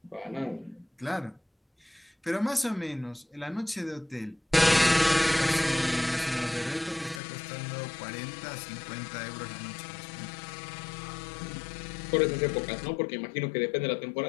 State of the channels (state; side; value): drops out; right; at 7.2 s